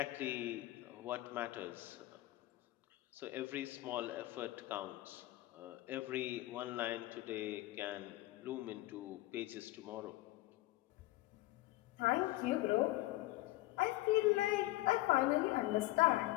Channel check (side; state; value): right; quieter; 17.8 dB